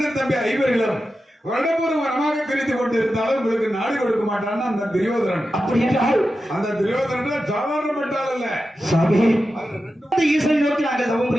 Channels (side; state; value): both; normal; correlation 0.91